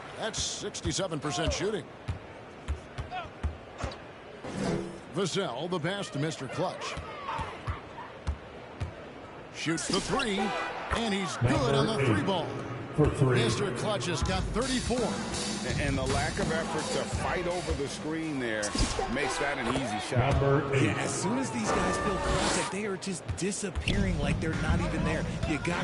That's 67% shooting. Vassell, the pass to Mr. Clutch. Shoots the 3, and he's good on the 3 ball. For 3. Mr. Clutch has got 34. And the lack of effort to fight over the screen there makes that an easy shot. Number 8. Yeah, as soon as these guys feel contact, they are just disappearing like they're not even there. You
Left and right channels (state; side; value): identical; both; correlation 1.00